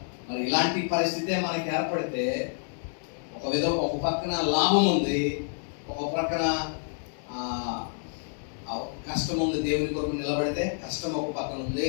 మరి ఇలాంటి పరిస్థితే మనకి ఏర్పడితే ఒక పక్కన లాభం ఉంది, ఒక పక్కన కష్టం ఉంది. దేవుని కొరకు నిలబడితే కష్టం ఒక పక్కన ఉంది,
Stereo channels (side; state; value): right; silent; digital silence